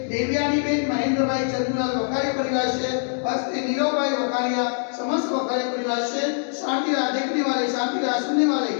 देवयानी बेन महेंद्र भाई चंद्रलाल वखारिया परिवार से हस्ते नीरव भाई वखारिया समस्त वखारिया परिवार से शांति राह देखने वाले, शांति राह सुनने वाले,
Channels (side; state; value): right; silent; 63 dB below the other